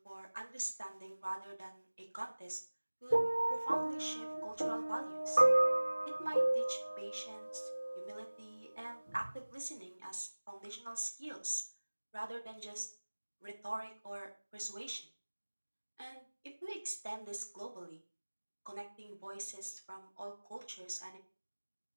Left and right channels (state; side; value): inverted; both; correlation -1.00